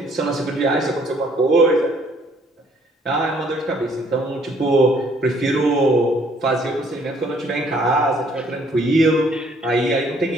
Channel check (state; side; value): normal; both; correlation 0.63